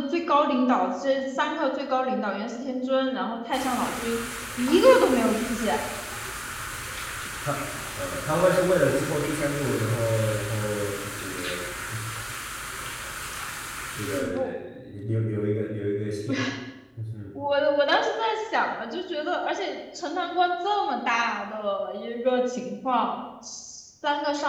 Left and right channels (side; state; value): both; identical; correlation 1.00